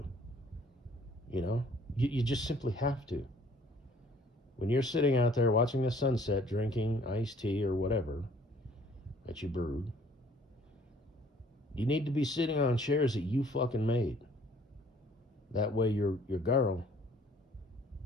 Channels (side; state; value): both; normal; correlation 0.57